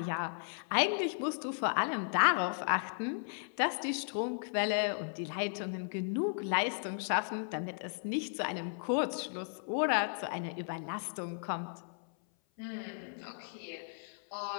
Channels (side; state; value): right; silent; 54 dB below the other